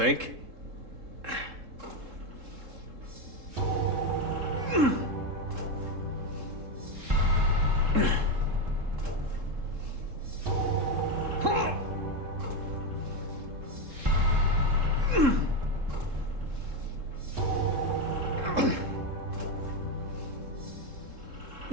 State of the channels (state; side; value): late; left; 3.7 ms